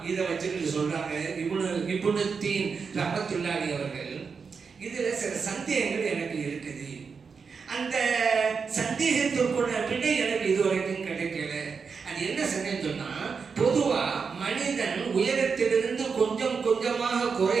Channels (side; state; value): left; quieter; 5.5 dB